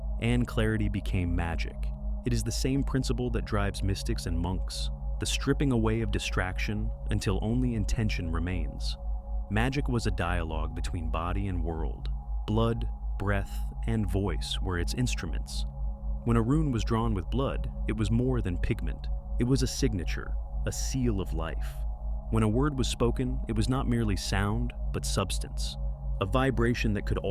and clarity became magic. It is the same principle that drives mystics and monks, the stripping away of distraction until only intention remains. Magic was a dialogue between body and world. Blood, breath, and voice were its instruments. When a rune was drawn with blood, it was more than pigment. It was a signature, a seal of life. When a word was spoken, it was not merely sound, but substance, a vibration that could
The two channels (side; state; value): both; identical; correlation 1.00